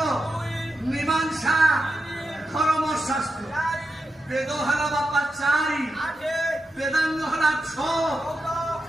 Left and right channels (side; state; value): both; normal; correlation 0.89